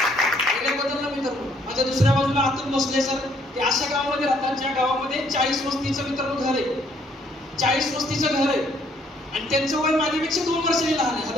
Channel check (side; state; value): both; normal; correlation 0.66